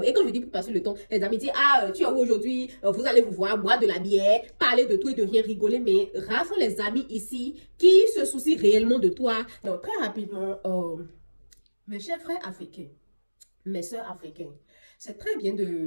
Et quand je dis pour passer le temps, les amitiés, tu es où aujourd'hui, vous allez vous voir, boire de la bière, parler de tout et de rien, rigoler. Mais rares sont les amis ici qui se soucient réellement de toi. Donc, très rapidement, mes chers frères africains, mes sœurs africaines, c'est très bien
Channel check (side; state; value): both; inverted; correlation -1.00